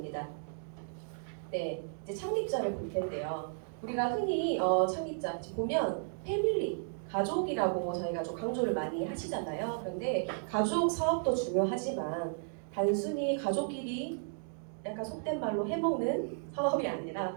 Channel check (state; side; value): silent; left; digital silence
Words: 네, 이제 창립자를 볼 텐데요. 우리가 흔히 창립자 보면 패밀리, 가족이라고 저희가 좀 강조를 많이 하시잖아요. 그런데 가족 사업도 중요하지만 단순히 가족끼리 약간 속된 말로 해먹는 사업이 아니라